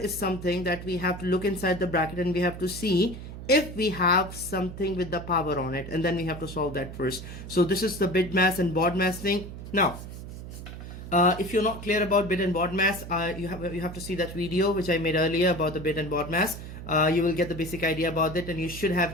something that we have to look inside the bracket and we have to see if we have something with the power on it, and then we have to solve that first. So this is the bit mass and baud mass thing. Now, if you're not clear about bit and baud mass, you have to see that video which I made earlier about the bit and baud mass. You will get the basic idea about it, and you should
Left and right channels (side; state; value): right; noise; hum, 11 dB below the sound